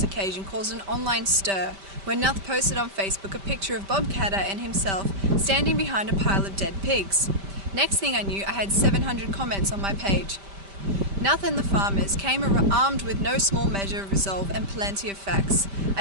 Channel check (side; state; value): left; late; 5.1 ms